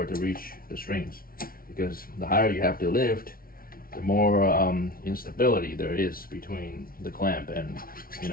it to reach the strings, because the higher you have to lift, the more instability there is between the clamp and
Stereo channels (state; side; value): late; right; 0.43 ms